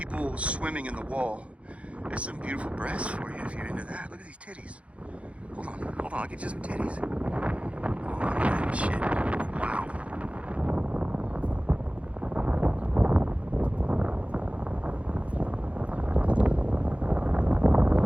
swimming in the wall. There's some beautiful breasts for you if you're into that. Look at these titties. Hold on, I'll get you some titties. Hold on, look at that shit. Wow.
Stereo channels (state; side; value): late; left; 0.063 ms